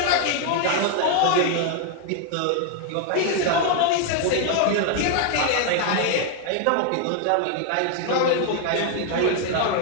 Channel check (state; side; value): different; both; correlation 0.00